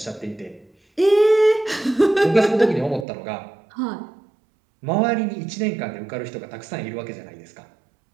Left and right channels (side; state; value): left; drops out; at 3.1 s